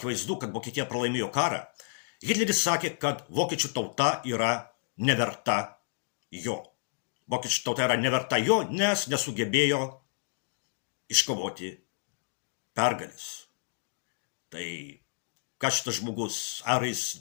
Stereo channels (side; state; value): right; silent; digital silence